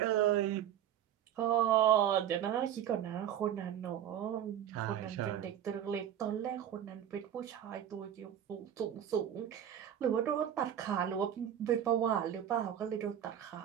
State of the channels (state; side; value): quieter; left; 10.2 dB